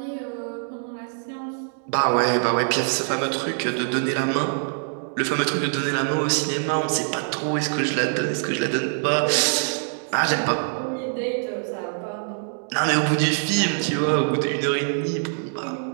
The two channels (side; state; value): left; silent; 61 dB below the other